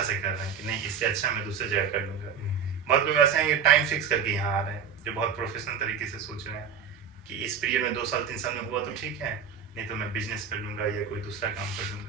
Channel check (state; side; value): quieter; left; 6.8 dB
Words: से कर रहे हैं कि नहीं इससे अच्छा मैं दूसरी जगह कर लूँगा। बहुत लोग ऐसे हैं कि टाइम फिक्स करके यहाँ आ रहे हैं, जो बहुत प्रोफेशनल तरीके से सोच रहे हैं कि इस पीरियड में 2 साल 3 साल में हुआ तो ठीक है, नहीं तो मैं बिजनेस कर लूँगा या कोई दूसरा काम कर